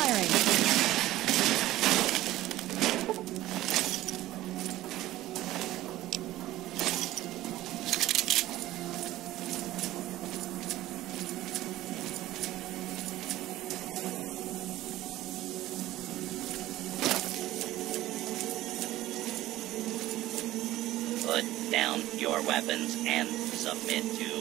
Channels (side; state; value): left; quieter; 15.7 dB